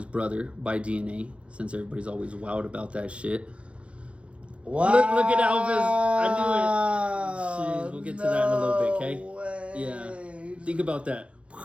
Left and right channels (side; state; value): left; late; 0.061 ms